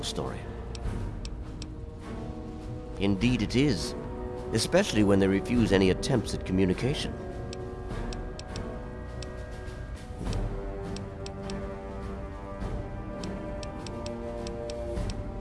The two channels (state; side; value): identical; both; correlation 1.00